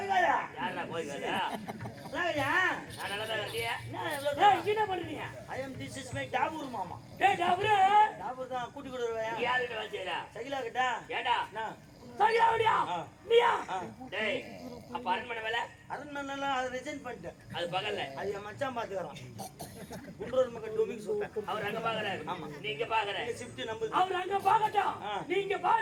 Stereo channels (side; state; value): both; identical; correlation 1.00